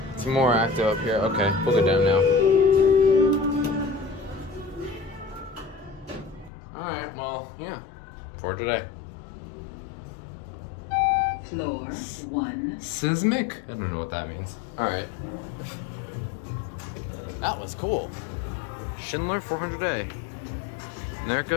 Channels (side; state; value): right; drops out; at 6.5 s